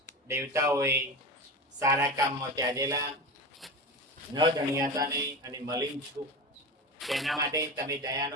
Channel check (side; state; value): both; normal; correlation 0.26